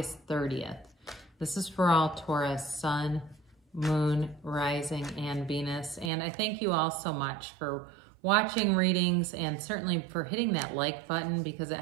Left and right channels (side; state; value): left; drops out; at 6.1 s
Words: 30th. This is for all Taurus, Sun, Moon, Rising, and Venus. And I thank you all so much for watching readings and certainly for hitting that like button because it